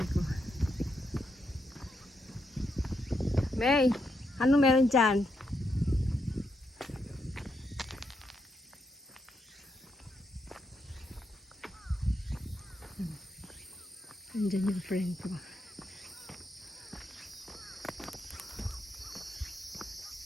ko? May, ano meron dyan? Andyan yung friend ko.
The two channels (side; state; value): both; normal; correlation 0.81